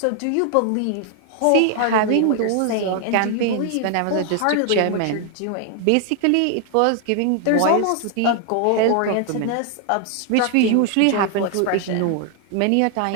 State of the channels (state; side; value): different; both; correlation 0.00